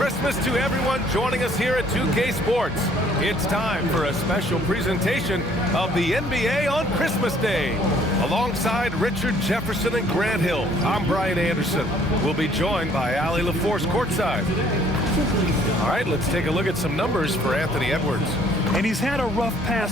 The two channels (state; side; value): normal; both; correlation 0.60